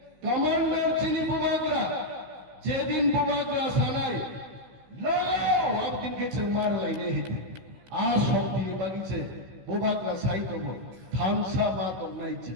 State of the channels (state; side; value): late; left; 16 ms